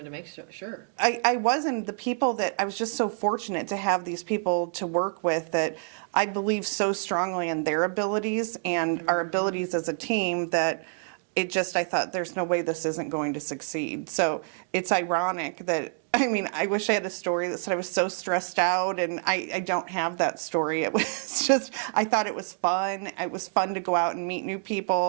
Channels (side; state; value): left; silent; 58 dB below the other